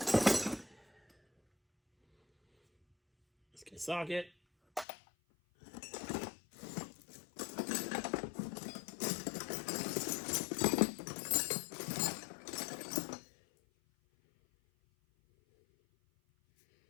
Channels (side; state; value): right; drops out; at 4.9 s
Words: Let's get a socket.